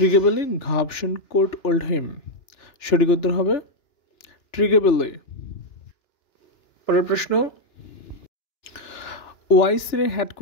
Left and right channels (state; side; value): late; right; 2.9 ms